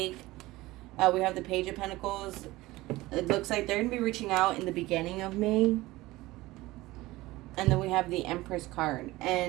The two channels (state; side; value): quieter; left; 19.0 dB